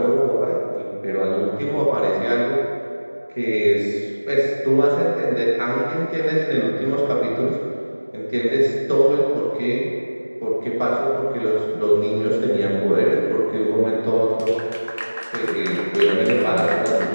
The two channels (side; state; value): both; inverted; correlation -1.00